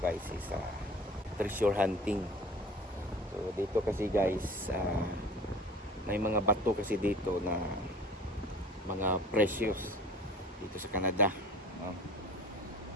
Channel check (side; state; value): both; normal; correlation 0.43